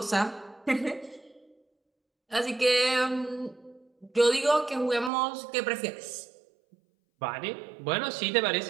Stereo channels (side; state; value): left; drops out; at 5.1 s